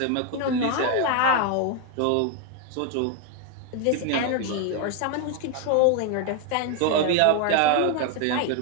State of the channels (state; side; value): different; both; correlation 0.01